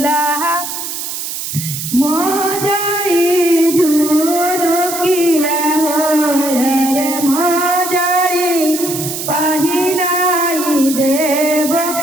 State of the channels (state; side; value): noise; right; hiss, 6 dB below the sound